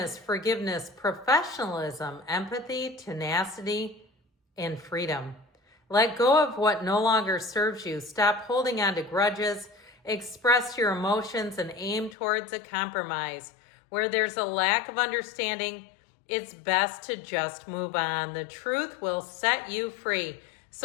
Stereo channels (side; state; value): right; drops out; at 12.2 s